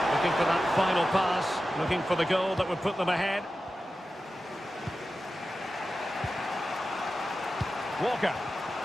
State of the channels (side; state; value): both; normal; correlation 0.93